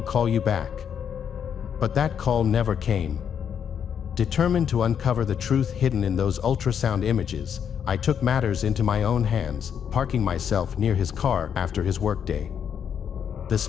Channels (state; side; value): quieter; right; 8.1 dB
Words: call you back." But that call never came. Determined to uncover the truth hidden in those ultrasound images, I took matters into my own hands, parking myself near his car after his workday. The